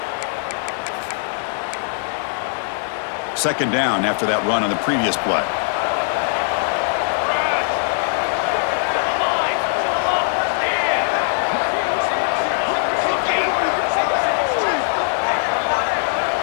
Second down after that run on the previous play.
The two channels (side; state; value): right; silent; digital silence